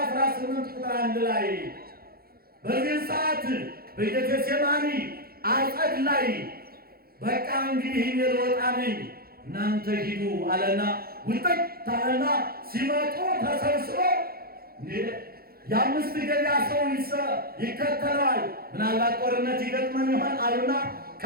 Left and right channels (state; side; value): late; left; 0.44 ms